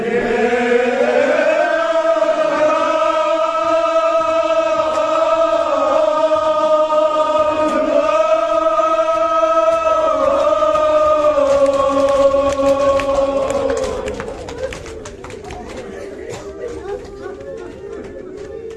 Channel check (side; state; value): both; identical; correlation 1.00